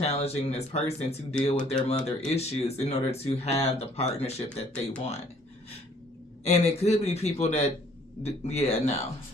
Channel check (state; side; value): normal; both; correlation 0.60